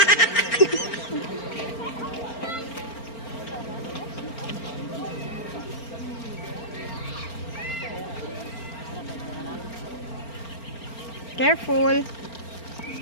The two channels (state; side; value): late; right; 4.4 ms